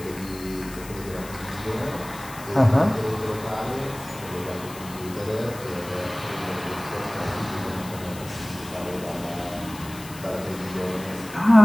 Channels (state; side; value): noise; left; hiss, 16 dB below the sound